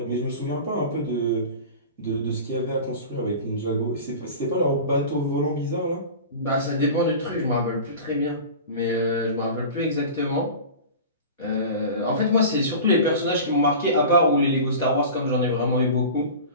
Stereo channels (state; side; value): inverted; both; correlation -0.35